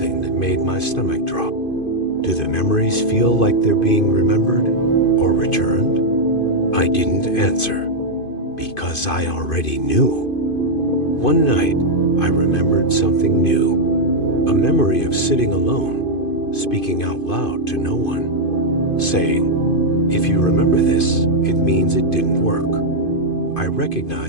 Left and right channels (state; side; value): late; right; 2.5 ms